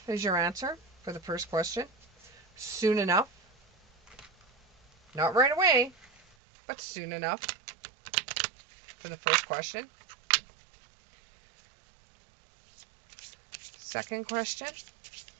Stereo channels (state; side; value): drops out; left; at 6.4 s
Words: is your answer for the first question. Soon enough. Not right away, but soon enough for the first question. Second question.